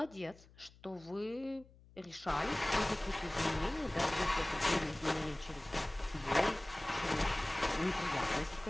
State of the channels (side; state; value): left; noise; hum, 24 dB below the sound